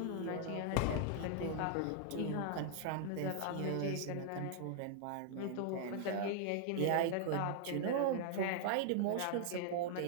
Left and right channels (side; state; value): both; different; correlation 0.00